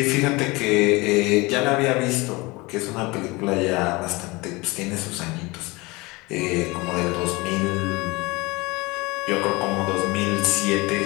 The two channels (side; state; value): right; quieter; 23.9 dB